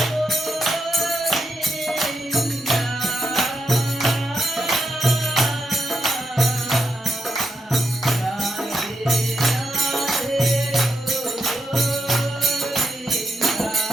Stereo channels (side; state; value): both; normal; correlation 0.83